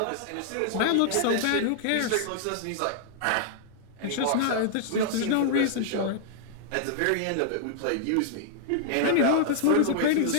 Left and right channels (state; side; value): different; both; correlation -0.01